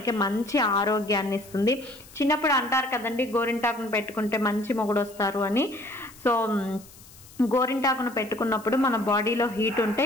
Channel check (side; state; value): left; noise; hiss, 22 dB below the sound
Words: మంచి ఆరోగ్యాన్ని ఇస్తుంది. చిన్నప్పుడు అంటారు కదండి గోరింటాకును పెట్టుకుంటే మంచి మొగుడు వస్తారు అని. సో గోరింటాకును పెట్టుకున్నప్పుడు మన బాడీలో హీట్ ఉంటే